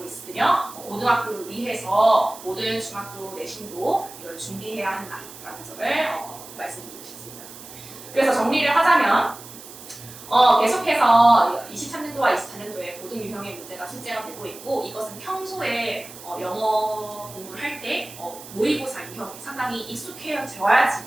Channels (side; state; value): right; noise; hiss, 16 dB below the sound